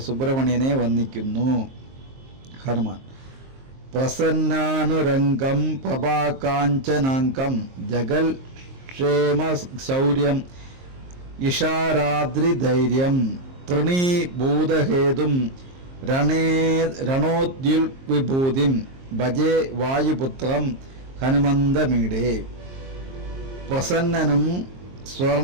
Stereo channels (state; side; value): late; left; 23 ms